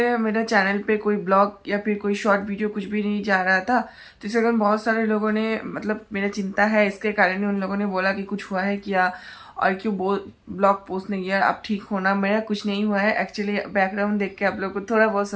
मेरा चैनल पे कोई ब्लॉग या फिर कोई शॉर्ट वीडियो कुछ भी नहीं जा रहा था। तो इसके कारण बहुत सारे लोगों ने मेरा चिंता है, इसके कारण ही उन लोगों ने बोला कि कुछ हुआ है क्या और क्यों ब्लॉग पोस्ट नहीं किया। अब ठीक होना, मेरा कुछ नहीं हुआ है। एक्चुअली बैकग्राउंड देख के आप लोग को थोड़ा बहुत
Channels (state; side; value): identical; both; correlation 1.00